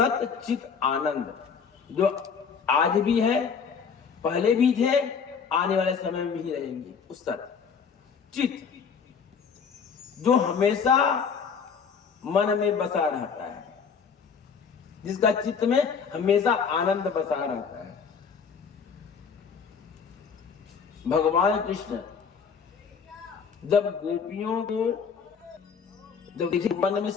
चित आनंद, जो आज भी है, पहले भी थे, आने वाले समय में भी रहेंगे, उस सत चित जो हमेशा मन में बसा रहता है, जिसका चित्त में हमेशा आनंद बसा रहता है। भगवान कृष्ण जब गोपियों को, जब देखिए मन में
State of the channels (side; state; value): right; quieter; 6.2 dB